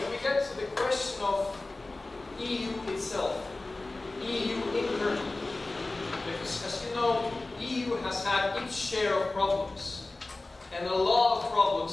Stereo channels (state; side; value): quieter; right; 3.1 dB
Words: we get to the question of EU itself, EU internally, because as you know, EU has had its share of problems, and a lot of